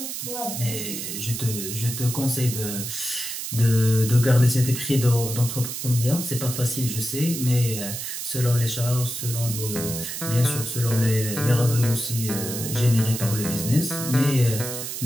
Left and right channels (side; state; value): right; noise; hiss, 6 dB below the sound